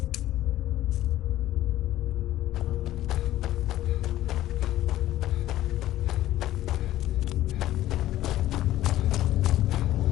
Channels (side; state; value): right; quieter; 14.3 dB